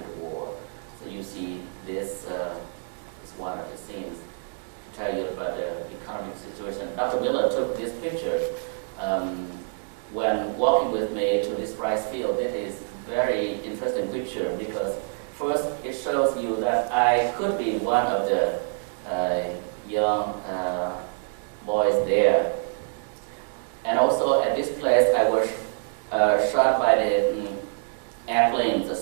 the war. So you see this is one of the scenes to tell you about the economic situation. Dr. Miller took this picture when walking with me to this rice field. It is very interesting picture because first it shows you that I could be one of the young boys there. And also at this place I was shot by the airplane, the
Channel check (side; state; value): left; silent; digital silence